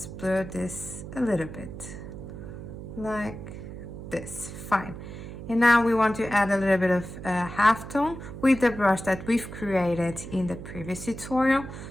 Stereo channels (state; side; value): noise; right; hum, 11 dB below the sound